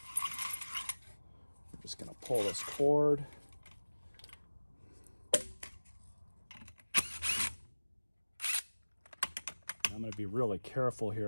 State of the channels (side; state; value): both; inverted; correlation -1.00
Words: I'm just gonna pull this cord. I'm gonna be really careful